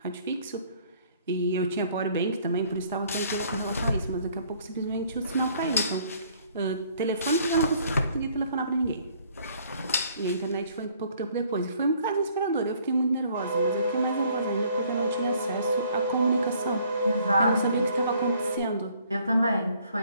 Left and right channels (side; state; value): both; inverted; correlation -0.61